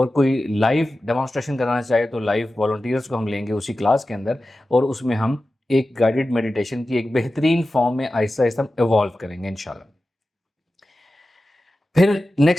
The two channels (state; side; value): normal; both; correlation 0.94